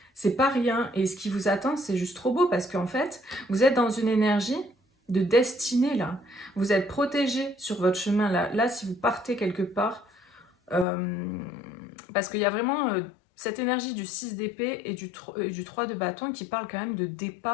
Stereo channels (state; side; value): drops out; right; at 10.9 s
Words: c'est pas rien. Et ce qui vous attend, c'est juste trop beau, parce qu'en fait, vous êtes dans une énergie de destinée là. Vous êtes protégé sur votre chemin là. Là, si vous partez quelque part, parce qu'il y a vraiment cette énergie du 6 d'épée et du 3 de bâton qui parle quand même de